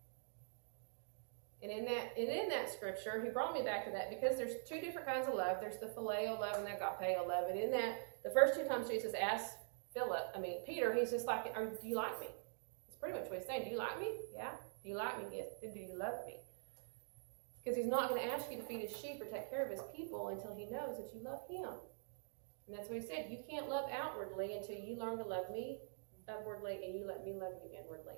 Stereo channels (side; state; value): left; silent; digital silence